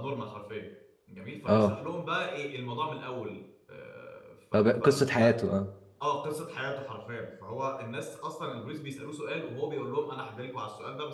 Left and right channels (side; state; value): both; identical; correlation 1.00